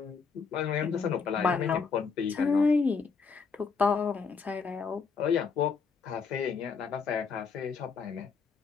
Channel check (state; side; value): quieter; right; 5.4 dB